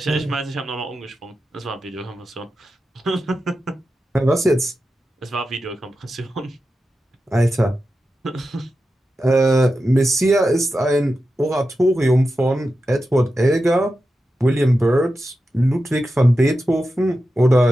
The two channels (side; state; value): both; normal; correlation 0.91